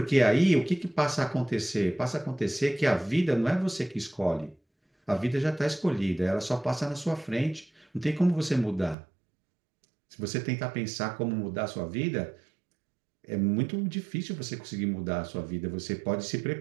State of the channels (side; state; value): left; drops out; at 9.0 s